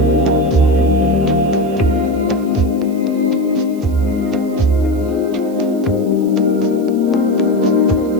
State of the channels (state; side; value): noise; right; hiss, 25 dB below the sound